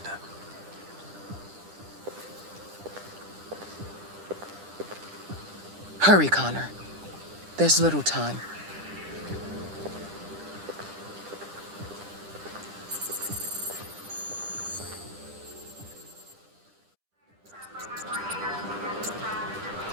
Hurry, Connor. There's little time.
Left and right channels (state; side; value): late; left; 10 ms